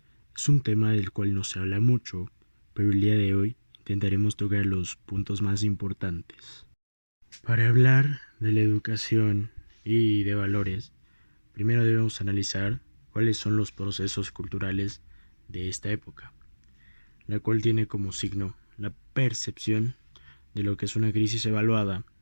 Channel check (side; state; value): both; inverted; correlation -1.00